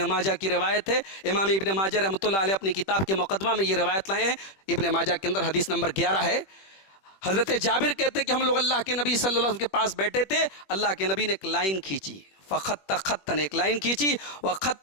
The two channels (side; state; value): right; late; 21 ms